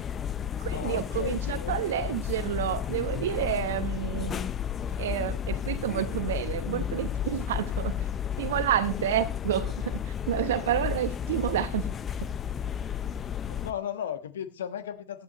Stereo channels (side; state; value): both; normal; correlation -0.01